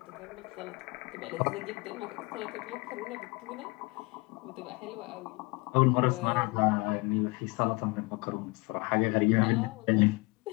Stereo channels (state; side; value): quieter; right; 25.8 dB